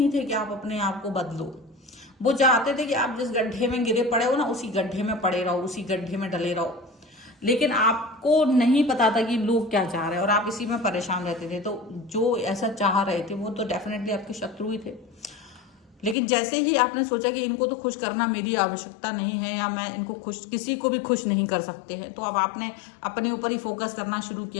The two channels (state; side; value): drops out; right; at 16.2 s